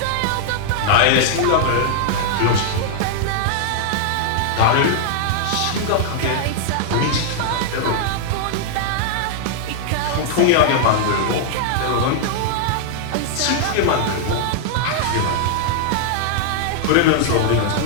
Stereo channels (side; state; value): both; different; correlation -0.01